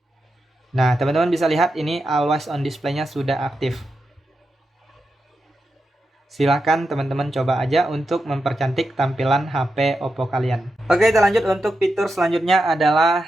Nah, teman-teman bisa lihat ini always on display-nya sudah aktif. Silahkan teman-teman coba aja untuk mempercantik tampilan HP Oppo kalian. Oke, kita lanjut untuk fitur selanjutnya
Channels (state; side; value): normal; both; correlation 0.88